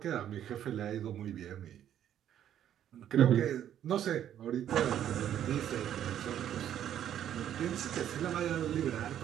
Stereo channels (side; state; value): left; quieter; 10.6 dB